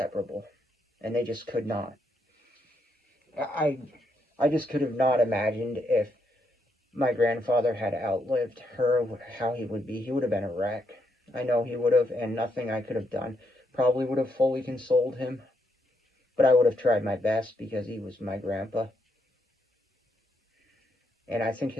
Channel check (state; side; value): normal; both; correlation 0.77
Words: and they just could not. I just could have not imagined if my grandfather had outlived her, how he would be. He would have been a wreck. I know he would have, and nothing I could have done probably would have fully consoled him. But I would have tried my best, because he was my grandpa. And I think